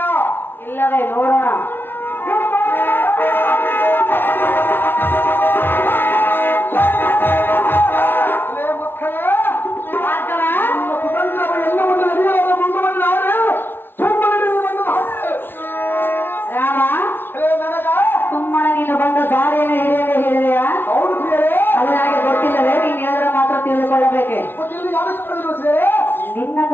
ಇಲ್ಲವೇ ನೋಡೋಣ. ರಾಮ, ಸುಮ್ಮನೆ ನೀನು ಬಂದ ದಾರಿಯನ್ನು ಹಿಡಿಯದೆ ಹೇಳಿದೆಯಾ? ಅದು ನನಗೆ ಗೊತ್ತಿಲ್ಲವೇ? ನೀನು ಹೇಳಿದ್ರೆ ಮಾತ್ರ ತಿಳಿದುಕೊಳ್ಳಬೇಕೆ.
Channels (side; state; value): right; late; 0.10 ms